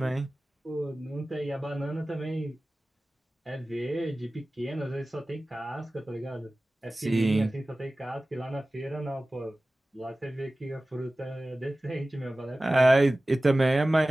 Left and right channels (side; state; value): both; normal; correlation 0.97